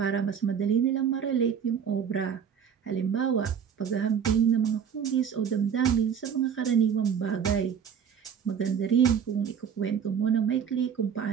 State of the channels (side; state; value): left; quieter; 7.7 dB